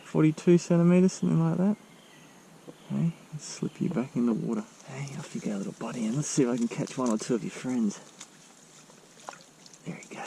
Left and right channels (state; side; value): identical; both; correlation 1.00